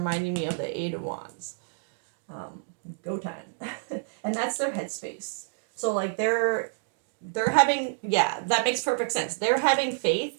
me of the Eight of Wands. Go time. And that's their headspace. So like they're having, yeah, that makes perfect sense. They're having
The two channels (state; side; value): silent; left; digital silence